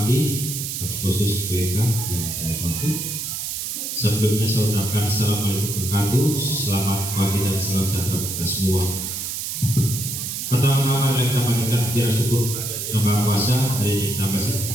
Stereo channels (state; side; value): noise; right; hiss, 4 dB below the sound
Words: khusus BK yang saya hormati, sebelumnya saya ucapkan Assalamualaikum warahmatullahi wabarakatuh. Selamat pagi dan salam sejahtera kita semua. Pertama-tama kita panjatkan puji syukur kepada Yang Maha Kuasa. Hari ini kita masih